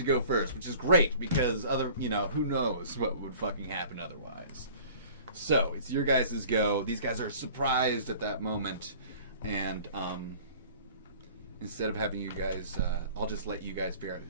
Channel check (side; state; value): both; inverted; correlation -0.47